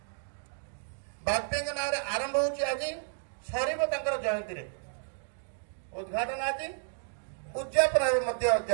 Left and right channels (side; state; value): left; silent; digital silence